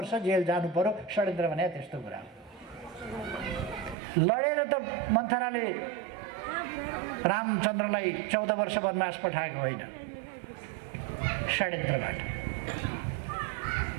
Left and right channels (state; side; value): drops out; left; at 4.0 s